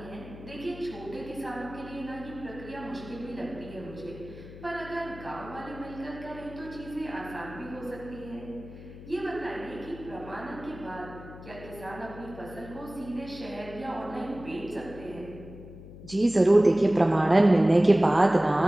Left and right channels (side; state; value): left; noise; hum, 15 dB below the sound